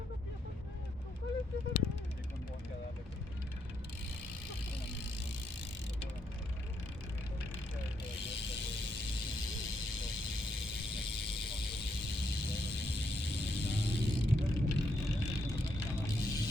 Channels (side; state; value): both; normal; correlation 0.77